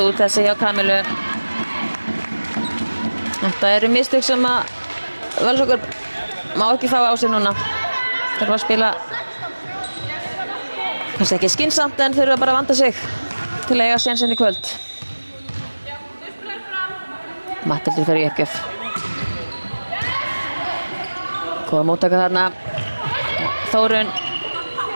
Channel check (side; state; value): both; inverted; correlation -1.00